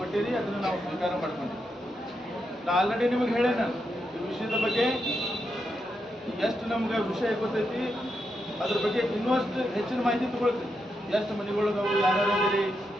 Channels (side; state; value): both; normal; correlation 0.84